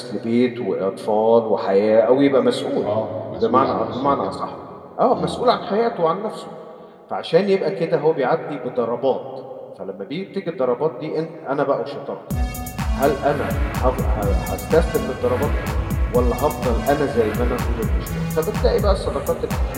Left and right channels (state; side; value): identical; both; correlation 1.00